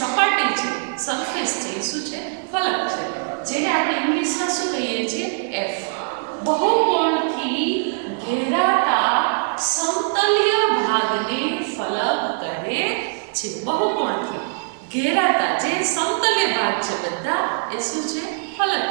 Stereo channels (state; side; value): silent; left; 56 dB below the other